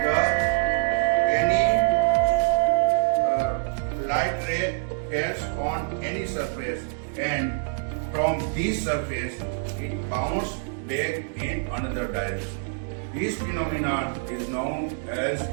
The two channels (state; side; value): silent; left; digital silence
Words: any light ray falls on any surface, and from this surface it bounces back in another direction. This phenomenon is known as